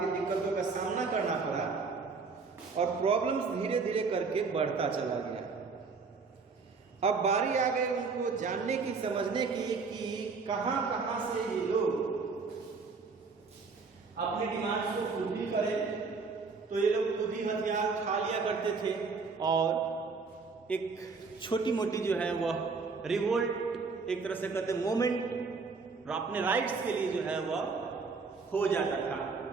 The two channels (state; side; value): quieter; left; 4.7 dB